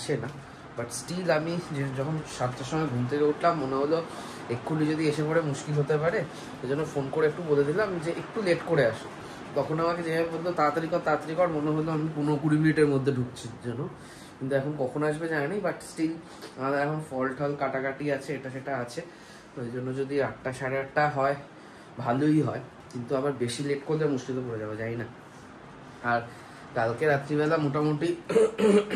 না। বাট স্টিল আমি যখন 7টার সময় ঘুম থেকে উঠলাম, মনে হলো এক্ষুনি যদি এসে পড়ে মুশকিল হতে পারে, এই জন্য ফোন করে একটু বলে দিলাম যে একটু লেট করে আসো। তখন আমাকে যেভাবে বলতো তাড়াতাড়ি কর, মনে হলো আমি 15-20 মিনিটের মধ্যে ঢুকছি যেন। কিন্তু এখন কখন আসবে জানি, বাট স্টিল আমাদের এখন ফল টল কাটাকাটি আছে, এটা সেটা আছে। ওই জন্য যদি 8টা 8:30 হয় ভালোই হয়, কিন্তু আবার বেশি লেট করলে মুশকিলে পড়ে যাবে, জানি না। আর কালকে রাত্রিবেলা মোটামুটি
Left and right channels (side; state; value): both; identical; correlation 1.00